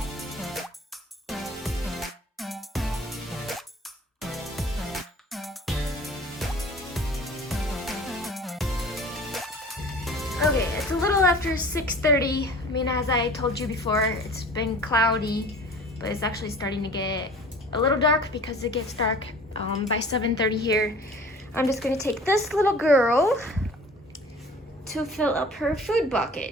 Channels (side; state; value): both; normal; correlation 0.44